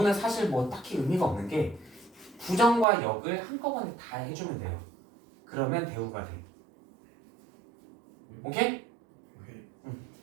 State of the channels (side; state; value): left; drops out; at 2.9 s